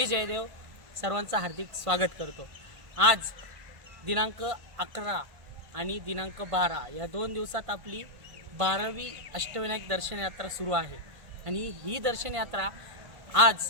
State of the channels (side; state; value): left; late; 1.5 ms